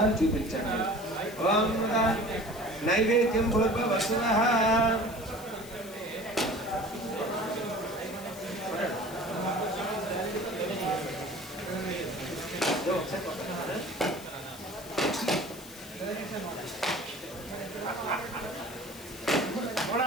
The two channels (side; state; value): left; noise; hiss, 17 dB below the sound